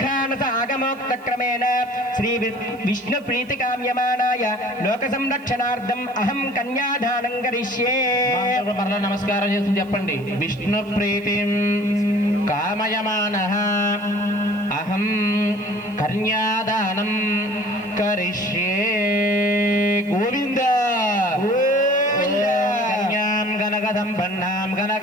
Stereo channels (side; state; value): right; noise; hiss, 29 dB below the sound